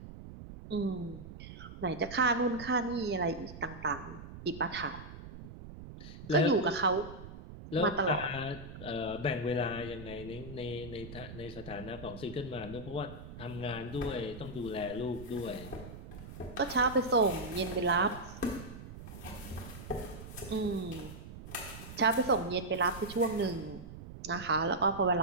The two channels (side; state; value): right; noise; rumble, 13 dB below the sound